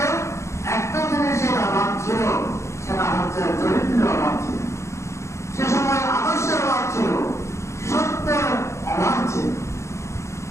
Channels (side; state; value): right; late; 0.14 ms